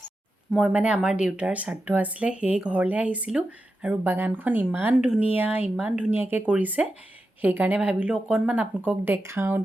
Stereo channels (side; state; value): both; normal; correlation 0.90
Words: মই মানে আমাৰ দেউতাৰ শ্ৰাদ্ধ আছিলে সেই ঘৰলৈ আহিছিলোঁ আৰু বাগানখন ইমান ধুনীয়াকৈ কৰিছে সেইকাৰণে ভাবিলোঁ অকণমান আপোনালোকক দেখাওঁ